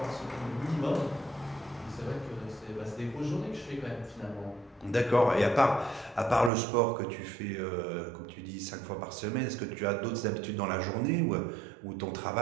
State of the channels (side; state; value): left; drops out; at 6.5 s